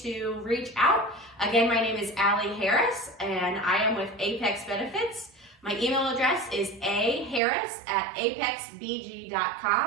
reach out. Again, my name is Allie Harris, and I am with Apex Benefits. My email address is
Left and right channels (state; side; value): drops out; left; at 7.4 s